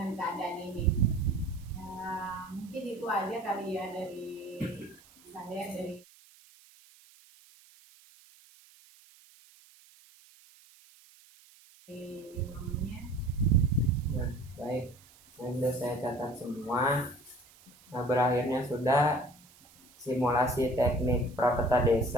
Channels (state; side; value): noise; right; hiss, 26 dB below the sound